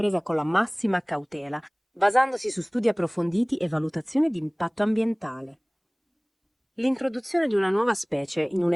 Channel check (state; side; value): identical; both; correlation 1.00